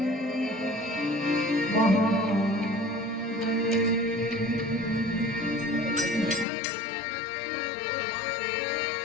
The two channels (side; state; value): right; drops out; at 6.5 s